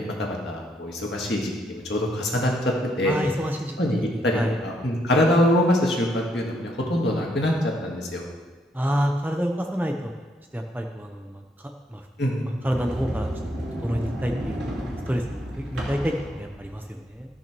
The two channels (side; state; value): both; normal; correlation 0.73